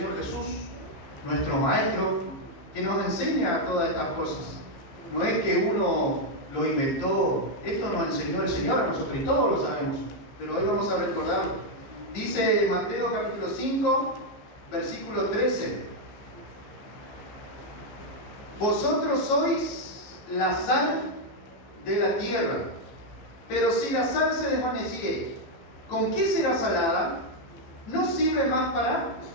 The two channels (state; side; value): late; right; 15 ms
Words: Jesús, nuestro Maestro, que nos enseña todas estas cosas. No es que uno lo inventó, esto nos enseñó el Señor a nosotros y todos lo sabemos, pero hoy vamos a recordarlo. Dice Mateo capítulo 5, versículo 13. Vosotros sois la sal de la tierra, pero si la sal se desvaneciere, ¿con qué será salada? No sirve más para